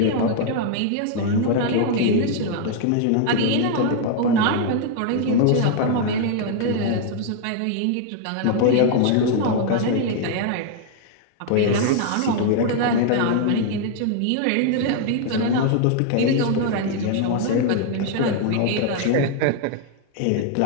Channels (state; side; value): different; both; correlation 0.00